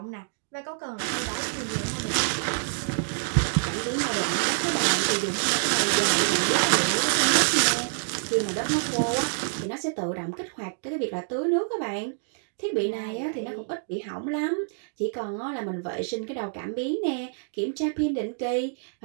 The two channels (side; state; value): left; silent; digital silence